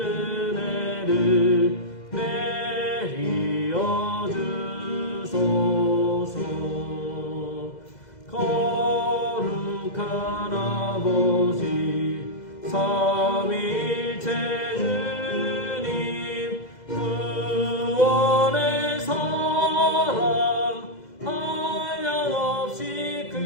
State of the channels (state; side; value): late; right; 2.0 ms